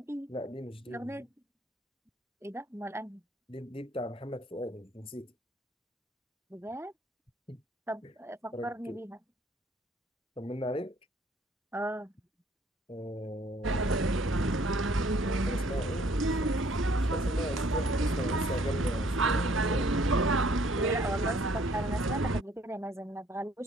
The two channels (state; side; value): normal; both; correlation 0.61